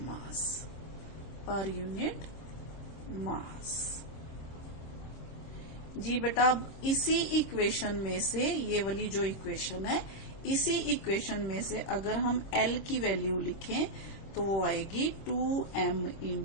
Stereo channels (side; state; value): right; late; 26 ms